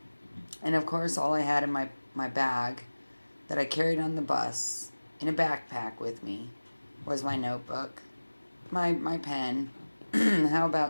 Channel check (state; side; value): inverted; both; correlation -1.00